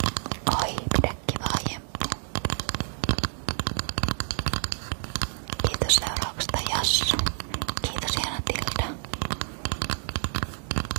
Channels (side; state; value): left; silent; digital silence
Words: Oi, pidä kivaa Jemppu. Kiitos seurauksesta Jassu. Kiitos Jana Tilda.